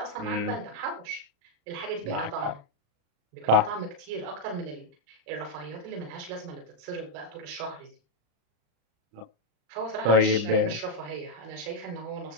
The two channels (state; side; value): late; left; 35 ms